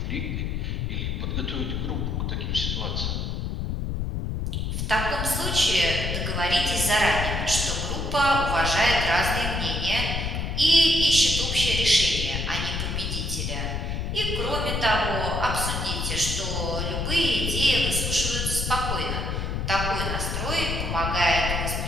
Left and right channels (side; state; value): left; noise; rumble, 2 dB below the sound